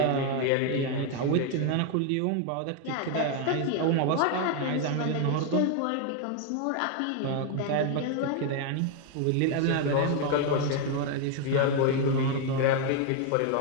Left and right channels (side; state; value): both; different; correlation 0.01